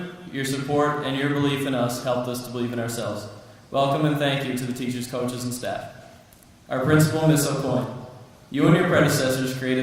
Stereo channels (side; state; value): both; identical; correlation 1.00